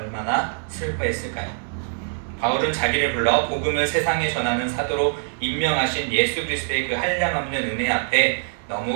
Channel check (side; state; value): left; silent; digital silence